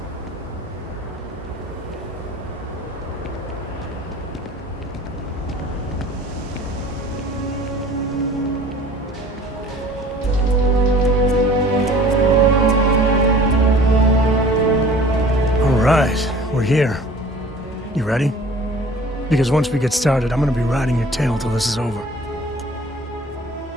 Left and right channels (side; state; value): both; normal; correlation 0.47